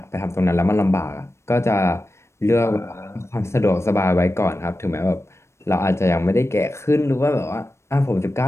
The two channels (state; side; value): late; right; 0.13 ms